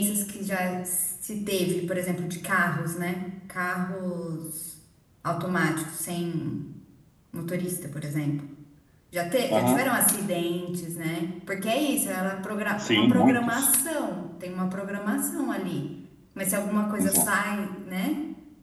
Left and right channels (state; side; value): identical; both; correlation 1.00